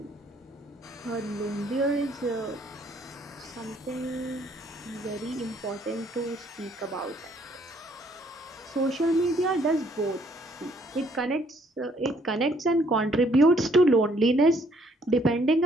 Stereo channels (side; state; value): both; normal; correlation 0.65